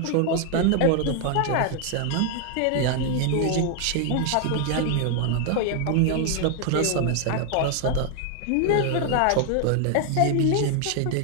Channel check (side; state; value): both; different; correlation 0.00